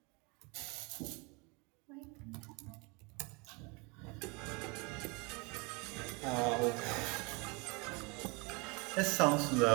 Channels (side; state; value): left; quieter; 29.6 dB